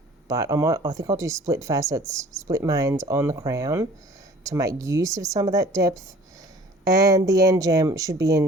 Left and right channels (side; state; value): both; normal; correlation 0.49